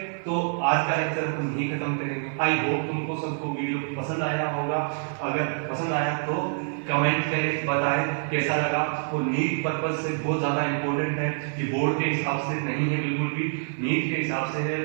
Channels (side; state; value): left; silent; digital silence